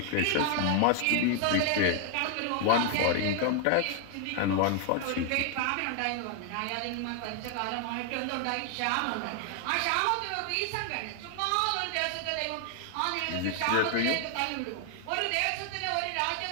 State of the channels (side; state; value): both; different; correlation 0.00